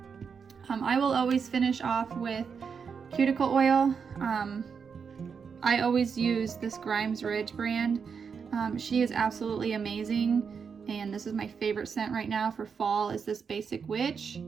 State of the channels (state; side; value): quieter; left; 6.2 dB